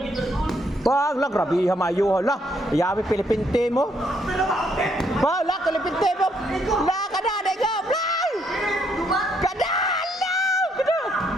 Bang, lah grabe ha mayo lah. Yawi Pilipinte mo. Ba, lah Pilipinte mo. La kada dego. Play. Kada.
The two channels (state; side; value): normal; both; correlation 0.72